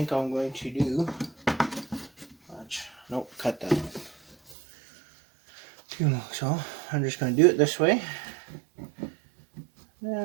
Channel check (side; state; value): left; drops out; at 4.5 s